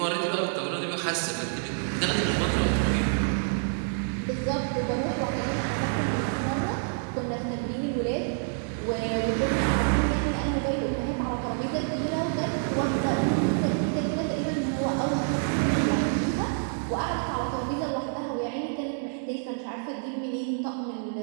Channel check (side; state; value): left; silent; digital silence